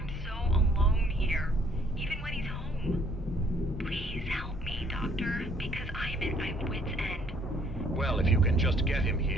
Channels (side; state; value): both; normal; correlation 0.62